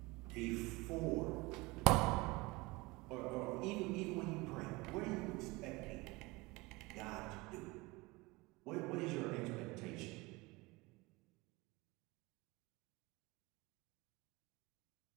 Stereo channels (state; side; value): quieter; left; 23.5 dB